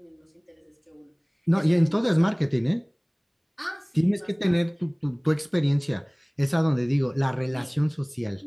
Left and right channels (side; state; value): both; identical; correlation 1.00